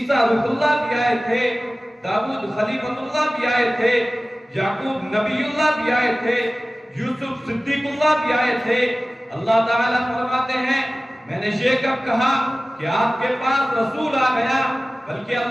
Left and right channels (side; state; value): both; normal; correlation 0.97